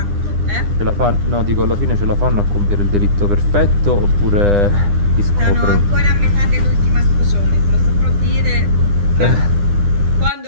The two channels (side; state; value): left; late; 9.9 ms